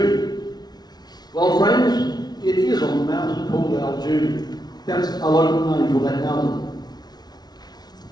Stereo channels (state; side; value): late; right; 0.19 ms